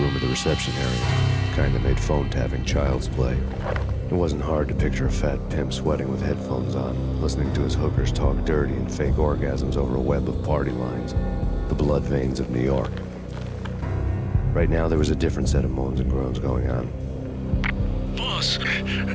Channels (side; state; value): both; identical; correlation 1.00